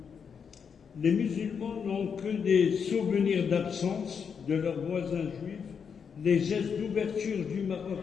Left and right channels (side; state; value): right; quieter; 6.6 dB